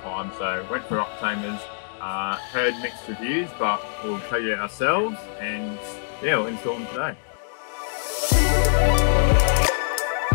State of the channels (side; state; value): right; silent; digital silence